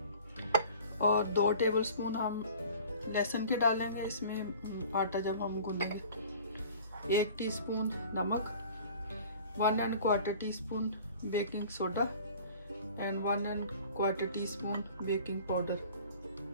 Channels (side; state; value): both; inverted; correlation -0.46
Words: और 2 टेबलस्पून हम लहसुन के डालेंगे इसमें आटा जब हम गूंदेंगे। 1 टीस्पून नमक, 1 1/4 teaspoon baking soda and 1 1/4 teaspoon baking powder